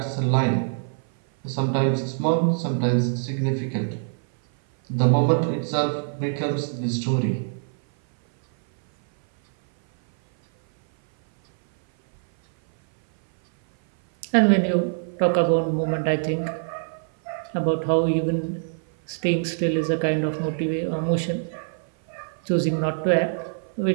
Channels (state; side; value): silent; left; 57 dB below the other